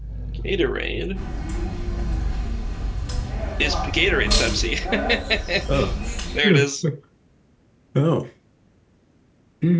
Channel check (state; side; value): identical; both; correlation 1.00